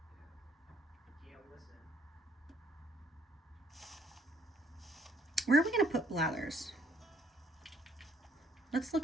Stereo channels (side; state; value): both; normal; correlation 0.63